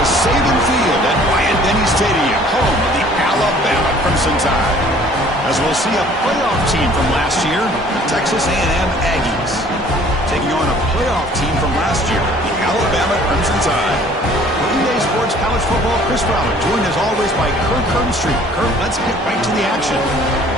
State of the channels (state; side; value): normal; both; correlation 0.54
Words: to Saban Field at Bryant-Denny Stadium, home of the Alabama Crimson Tide. As we'll see a playoff team from last year, the Texas A&M Aggies, taking on a playoff team from last year, the Alabama Crimson Tide. For EA Sports College Football, Chris Fowler, joined as always by Kurt Kernstreet. Kurt, let's get right to the action.